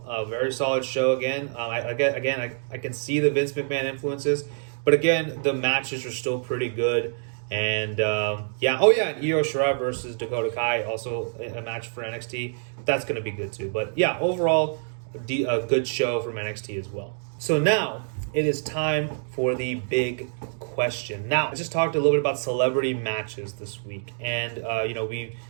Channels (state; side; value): silent; left; digital silence